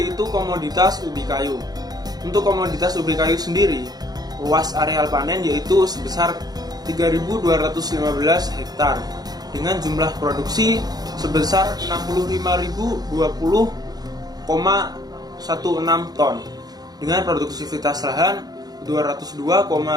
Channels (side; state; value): left; late; 0.19 ms